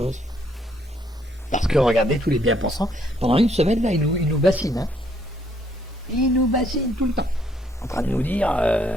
Parce que regardez tous les bien-pensants, pendant une semaine, là, ils nous bassinent, hein. Ils nous bassinent tout le temps, en train de nous dire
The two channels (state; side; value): normal; both; correlation 0.69